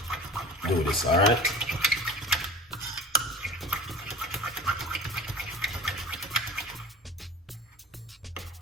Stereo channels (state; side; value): normal; both; correlation 0.38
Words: do this. All right,